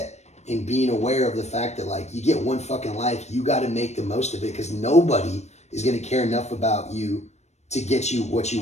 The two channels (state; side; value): late; right; 0.32 ms